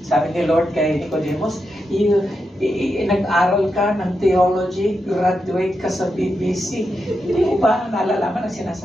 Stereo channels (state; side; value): normal; both; correlation 0.86